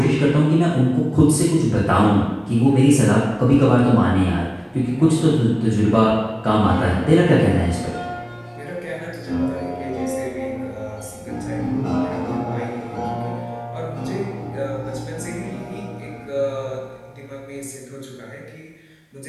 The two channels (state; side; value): identical; both; correlation 1.00